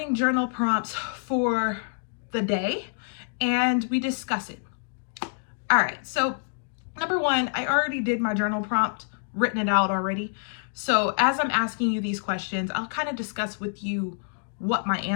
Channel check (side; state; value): right; silent; digital silence